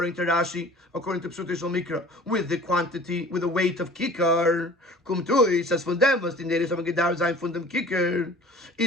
to Rashi, according to Psutishal Mikra, with the quantity, with the weight of Kikar. Kumtui says von dem, was die Neres haben gedauert sein von dem Kikar.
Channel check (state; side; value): normal; both; correlation 0.46